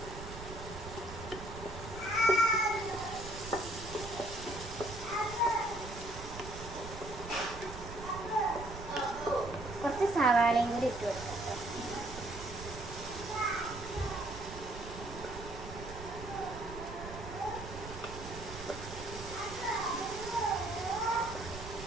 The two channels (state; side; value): noise; right; rumble, 11 dB below the sound